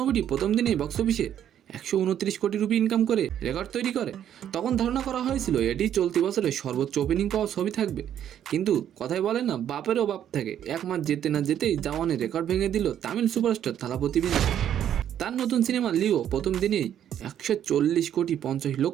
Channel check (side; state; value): left; quieter; 10.2 dB